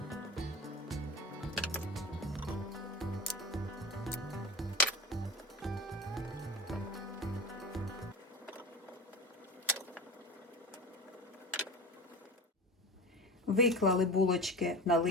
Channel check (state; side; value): normal; both; correlation 0.30